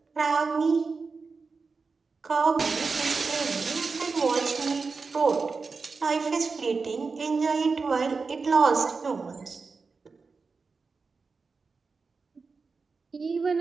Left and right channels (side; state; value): left; quieter; 4.5 dB